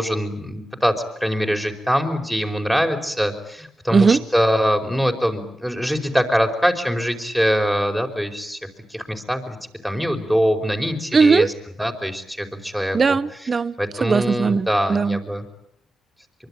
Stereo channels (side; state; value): both; normal; correlation 0.94